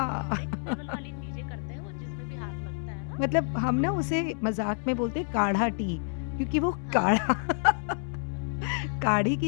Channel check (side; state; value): right; silent; 59 dB below the other